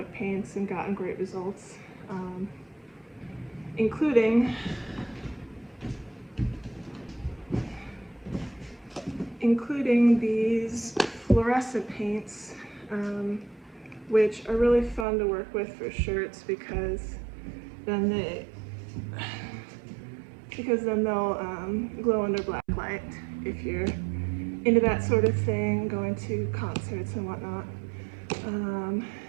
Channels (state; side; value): drops out; left; at 15.1 s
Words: paints and gotten great results, including these fluorescent paints, which are really fun to work with for shirts because then they'll glow under black light if you're into that sort of thing, going to concerts and whatnot.